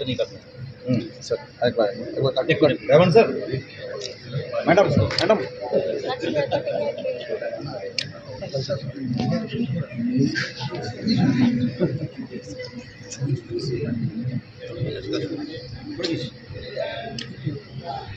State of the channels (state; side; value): identical; both; correlation 1.00